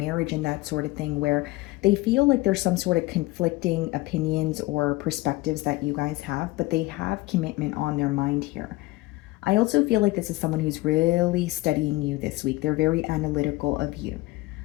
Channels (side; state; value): right; quieter; 20.3 dB